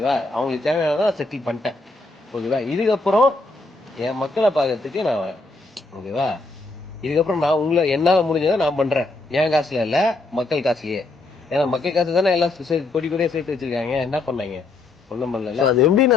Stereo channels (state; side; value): quieter; right; 3.3 dB